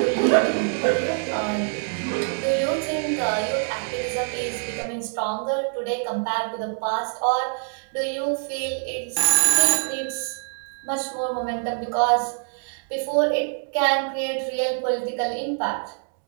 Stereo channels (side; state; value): left; silent; 59 dB below the other